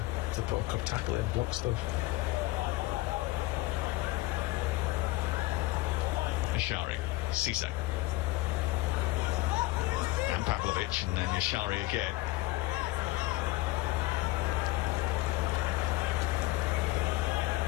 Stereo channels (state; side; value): quieter; right; 18.7 dB